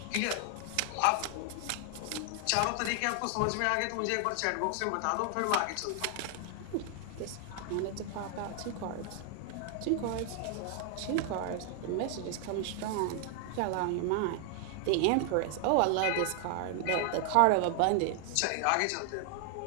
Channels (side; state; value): both; different; correlation 0.00